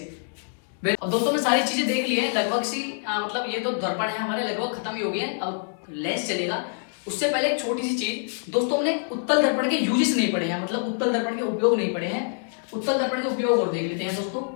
अब दोस्तों ने सारी चीजें देख ली है लगभग सी, मतलब ये तो दर्पण है हमारे लगभग खत्म ही हो गए हैं, अब लेंस चलेगा। उससे पहले एक छोटी सी चीज दोस्तों, हमने उत्तल दर्पण के यूजेस नहीं पढ़े हैं, मतलब उत्तल दर्पण के उपयोग नहीं पढ़े हैं। उत्तल दर्पण के उपयोग और देख लेते हैं दोस्तों।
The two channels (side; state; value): right; silent; digital silence